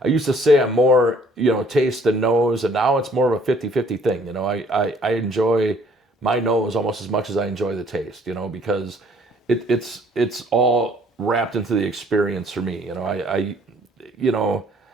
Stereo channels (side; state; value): both; normal; correlation 0.60